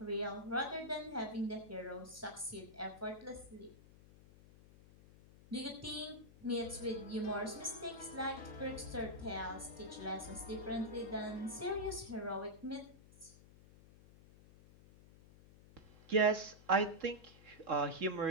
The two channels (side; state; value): left; noise; hum, 21 dB below the sound